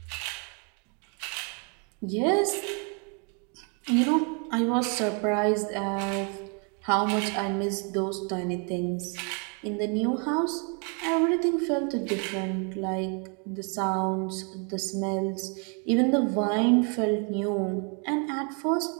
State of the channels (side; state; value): left; quieter; 37.1 dB